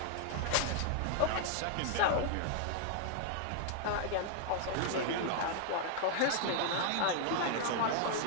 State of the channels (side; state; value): both; different; correlation 0.00